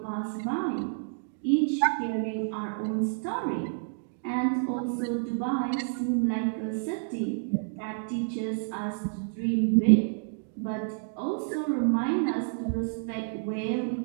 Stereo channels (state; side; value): silent; left; digital silence